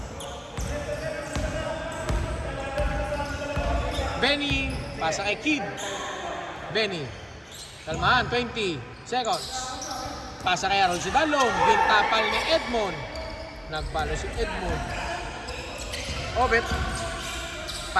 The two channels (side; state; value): both; identical; correlation 1.00